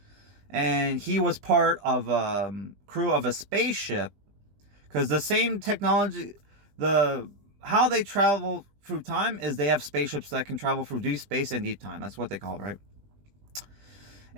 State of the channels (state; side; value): late; left; 20 ms